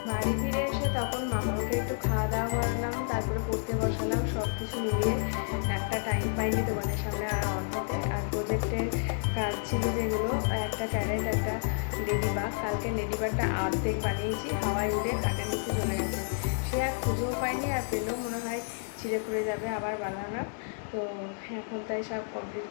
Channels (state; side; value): silent; right; digital silence